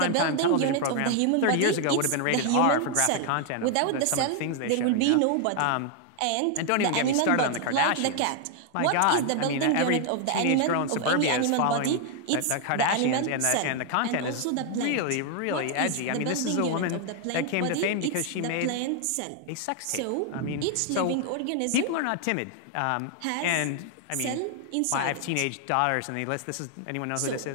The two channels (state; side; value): different; both; correlation 0.00